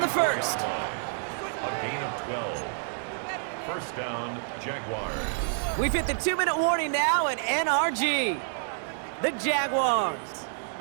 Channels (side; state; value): left; silent; digital silence